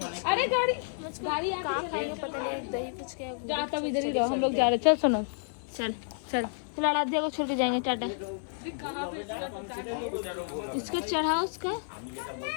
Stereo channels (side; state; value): right; silent; 58 dB below the other